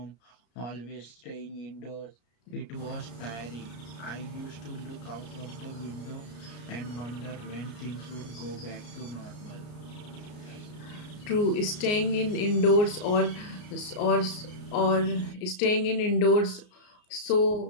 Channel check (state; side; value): late; right; 33 ms